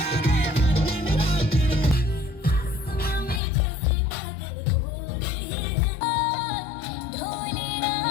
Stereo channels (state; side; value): drops out; right; at 3.4 s